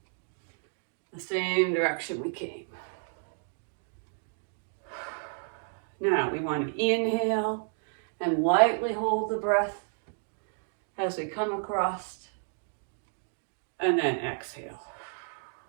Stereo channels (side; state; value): left; silent; 57 dB below the other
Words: the same direction we came. Now we want to inhale and lightly hold the breath as we come across, and then exhale.